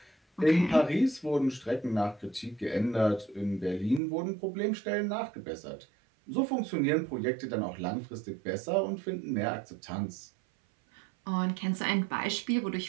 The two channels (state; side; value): drops out; left; at 4.0 s